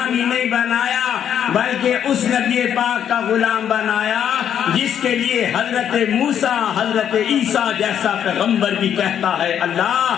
ہی نہیں بنایا، بلکہ اس نبی پاک کا غلام بنایا جس کے لیے حضرت موسیٰ حضرت عیسیٰ جیسا پیغمبر بھی کہتا ہے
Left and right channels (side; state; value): right; quieter; 9.2 dB